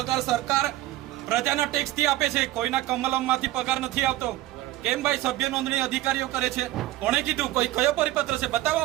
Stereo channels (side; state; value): left; quieter; 15.8 dB